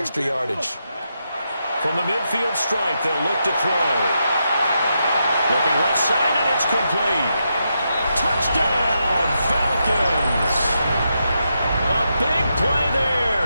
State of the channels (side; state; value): both; inverted; correlation -0.84